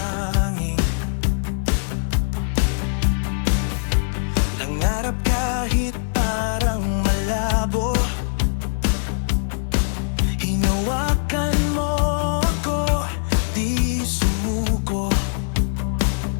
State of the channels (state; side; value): silent; right; 60 dB below the other